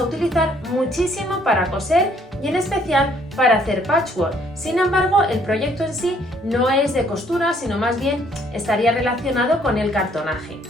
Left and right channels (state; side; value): normal; both; correlation 0.64